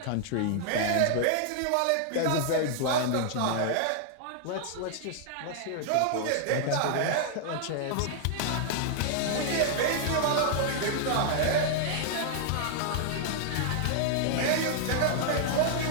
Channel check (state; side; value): different; both; correlation -0.01